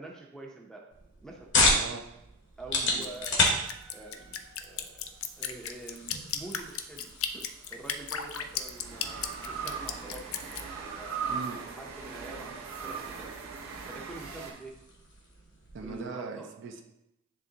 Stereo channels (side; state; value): both; normal; correlation 0.09